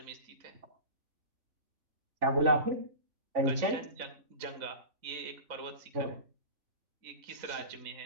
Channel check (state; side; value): late; left; 3.5 ms